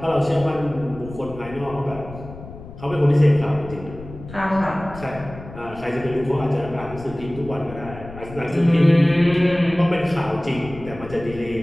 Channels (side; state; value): left; noise; rumble, 15 dB below the sound